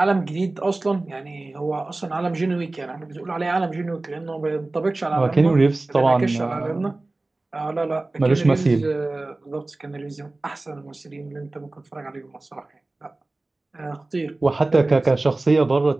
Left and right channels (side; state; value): left; quieter; 3.0 dB